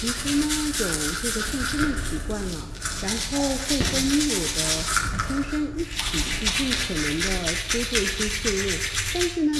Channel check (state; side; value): identical; both; correlation 1.00